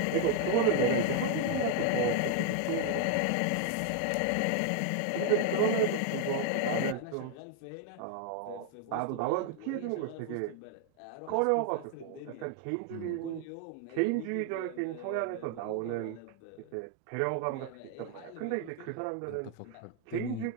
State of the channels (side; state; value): both; different; correlation 0.00